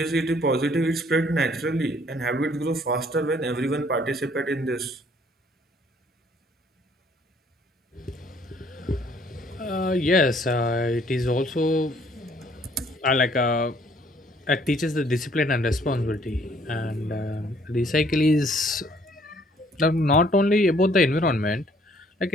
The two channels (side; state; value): both; normal; correlation 0.62